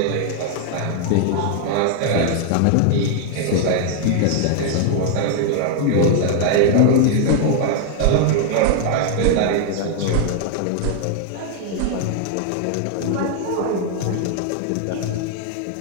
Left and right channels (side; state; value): both; different; correlation 0.00